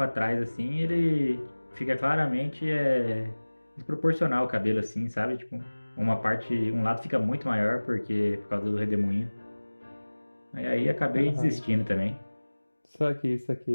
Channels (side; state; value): both; inverted; correlation -1.00